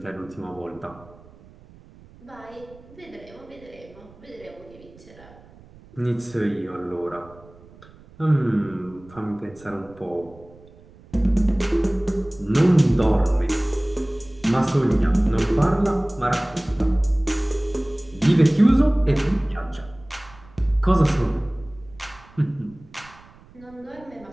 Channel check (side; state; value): right; noise; rumble, 24 dB below the sound